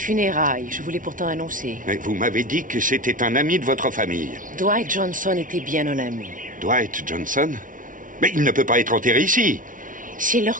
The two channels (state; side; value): late; left; 0.38 ms